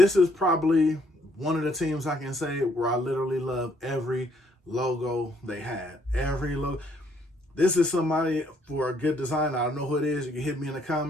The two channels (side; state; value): both; normal; correlation 0.68